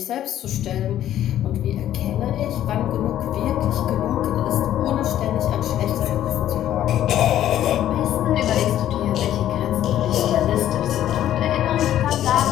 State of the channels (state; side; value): quieter; right; 11.9 dB